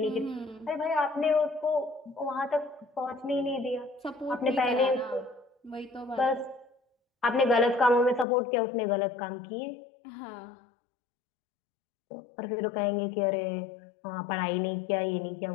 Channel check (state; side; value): drops out; right; at 8.2 s